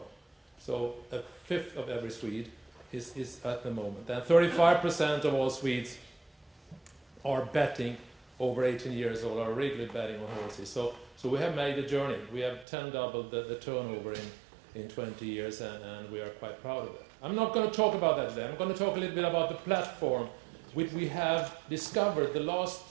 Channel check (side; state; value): left; drops out; at 12.7 s